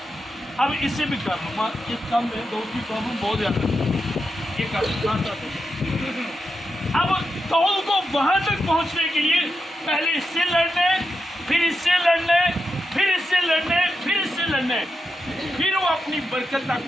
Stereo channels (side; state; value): both; normal; correlation 0.87